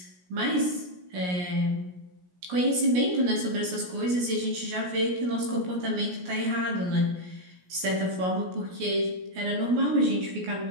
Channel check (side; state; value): left; late; 17 ms